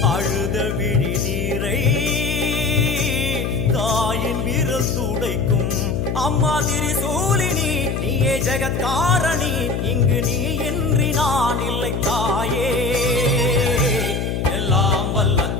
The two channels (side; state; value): left; noise; hum, 2 dB below the sound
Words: அழுத விழி நீரை தாயின் விரல் துடைக்கும் அம்மா திரிசூலினி நீயே ஜெகத்காரணி இங்கு நீ இன்றி நான் இல்லை தாயே எல்லாம் வல்ல